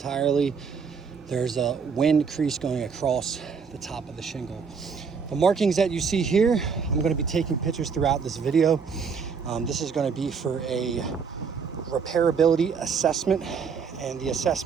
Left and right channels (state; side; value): quieter; left; 5.9 dB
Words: There's a wind crease going across the top of the shingle. The markings that you see here, I'm going to be taking pictures throughout this video. This is going to be for a repairability assessment, and the